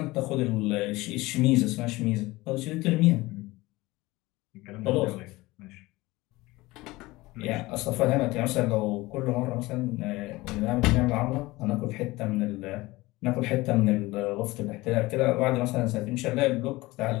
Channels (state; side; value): quieter; right; 20.4 dB